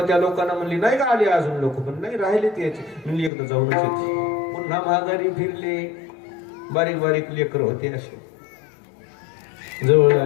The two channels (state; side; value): drops out; right; at 3.3 s